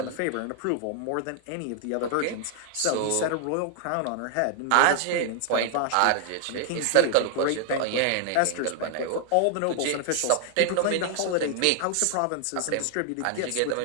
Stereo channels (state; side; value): different; both; correlation 0.00